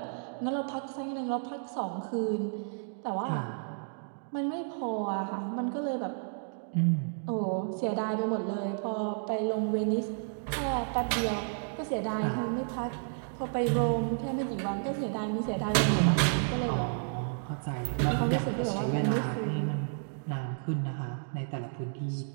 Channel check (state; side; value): silent; left; digital silence